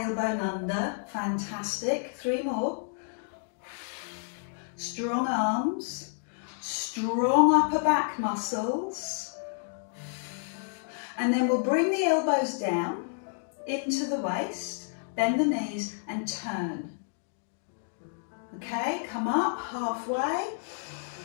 under. Fantastic. 3 more. Strong arms, strong upper back muscles. And then we'll bring the elbows down into the waist. Bend the knees and turn. Okay, come up halfway.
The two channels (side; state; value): right; silent; digital silence